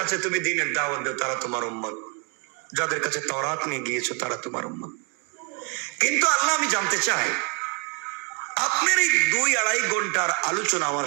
তুমি দ্বীনের দাওয়াত দাও তারা তোমার উম্মত, যাদের কাছে তাওরাত নিয়ে গিয়েছো তারা তোমার উম্মত। কিন্তু আল্লাহ আমি জানতে চাই, আপনার এই 2-2.5 ঘন্টার আলোচনা আমার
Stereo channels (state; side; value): quieter; left; 31.4 dB